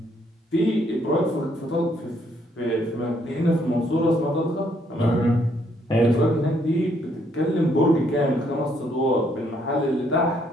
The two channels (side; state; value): both; normal; correlation 0.70